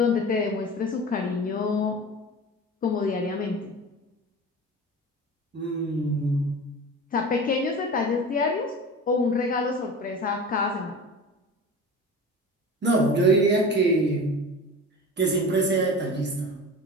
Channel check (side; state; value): both; normal; correlation 0.34